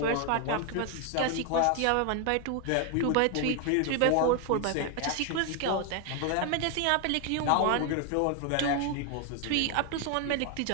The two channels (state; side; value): different; both; correlation 0.01